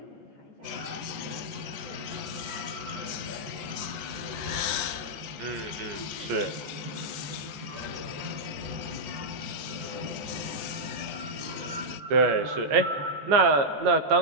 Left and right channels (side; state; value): left; late; 14 ms